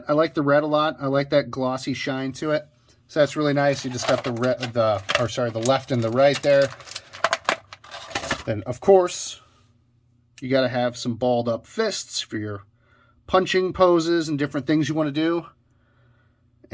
I like the red a lot. I like that glossy shine to it. So that's really nice. You just got the left and the right there. Then, of course, you got to have some balled up fists for your punching poses and different things you want to do.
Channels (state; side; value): identical; both; correlation 1.00